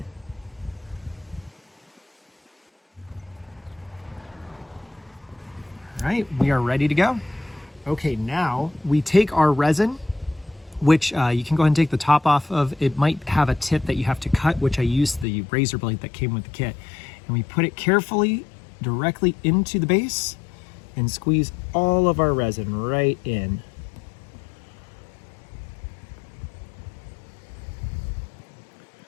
All right, we are ready to go. Okay, now we take our resin, which you can go ahead and take the top off of. It might have a tip that you have to cut, which I used the razor blade that came with the kit. And we put it carefully directly into the base and squeeze all of our resin right in.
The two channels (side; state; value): right; drops out; at 15.2 s